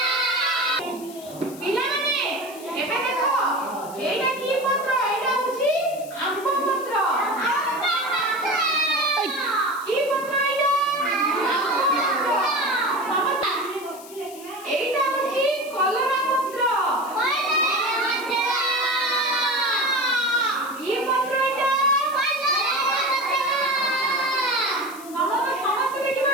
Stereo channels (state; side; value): noise; left; hiss, 18 dB below the sound